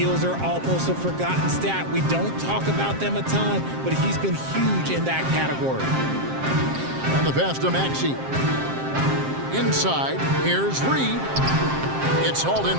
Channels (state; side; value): late; left; 7.6 ms